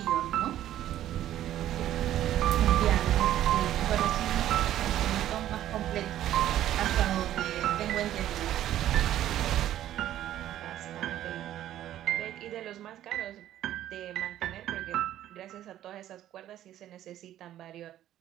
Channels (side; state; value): left; quieter; 12.4 dB